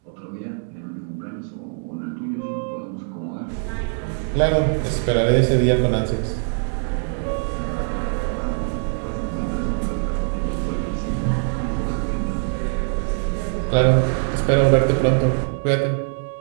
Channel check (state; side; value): silent; left; 64 dB below the other